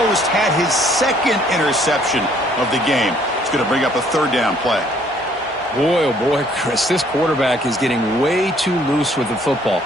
had his second interception of the game. It's going to bring up a third down play. Boy, oh boy, Chris, this quarterback is getting way too loose with the football.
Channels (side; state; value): both; normal; correlation 0.62